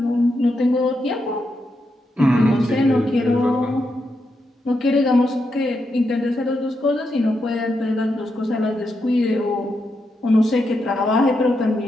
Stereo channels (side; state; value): both; normal; correlation 0.84